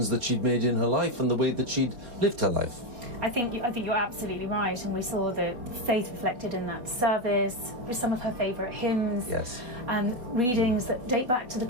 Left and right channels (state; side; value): late; left; 4.1 ms